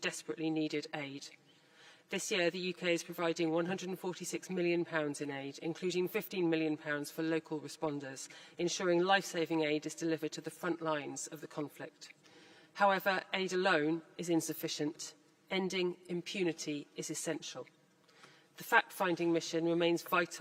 desperately needed aid. This year, the UK is providing £146 million in aid, including £15 million for local responders, ensuring life-saving aid is delivered to the front lines of the conflict. However, aid alone is insufficient. Ending impunity is essential. The fact-finding mission remains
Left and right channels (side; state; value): both; identical; correlation 1.00